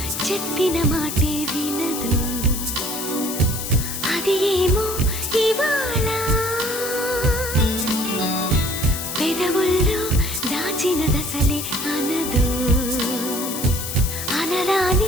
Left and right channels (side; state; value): left; noise; hiss, 6 dB below the sound